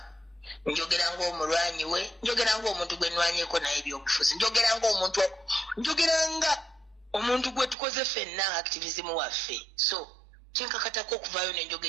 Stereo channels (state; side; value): drops out; left; at 7.8 s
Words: njogeranga omulwanyi we, njogeranga omuntu gwe nnwanyeko naye ebyobufuzi, njogeranga omuntu gwe tukoze ffenna activism waffe. So kyenkakatako okuvaayo